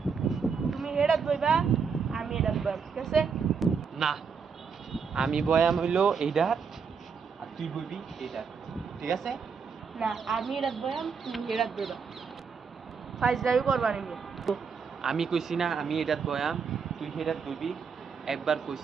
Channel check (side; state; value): left; quieter; 5.9 dB